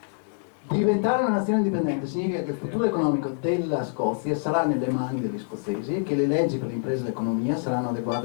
Diventare una nazione indipendente significa che il futuro economico della Scozia sarà nelle mani degli scozzesi e che le leggi per le imprese e l'economia saranno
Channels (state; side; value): silent; right; digital silence